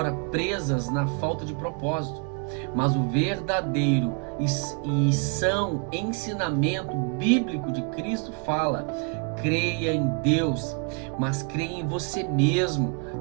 presas na falta de propósito. Mas o verdadeiro e são ensinamento bíblico de Cristo fala: creia em Deus, mas creia em você mesmo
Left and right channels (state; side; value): quieter; left; 38.3 dB